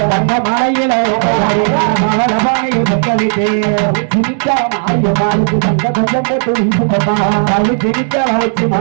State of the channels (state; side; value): silent; left; digital silence